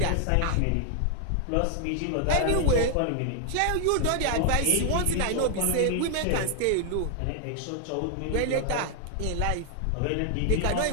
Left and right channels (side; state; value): both; different; correlation 0.00